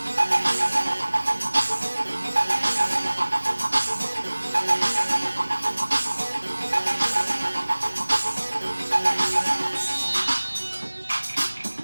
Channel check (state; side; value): inverted; both; correlation -1.00